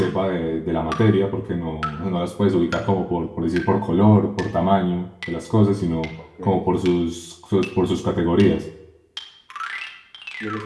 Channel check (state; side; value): identical; both; correlation 1.00